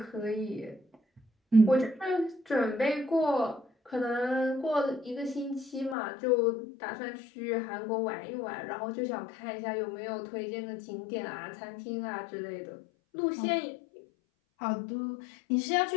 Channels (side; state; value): right; drops out; at 6.0 s